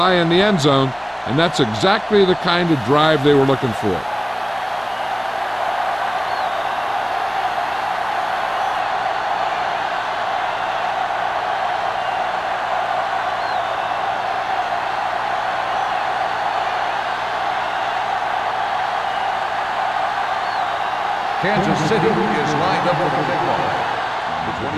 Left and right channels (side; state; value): both; identical; correlation 1.00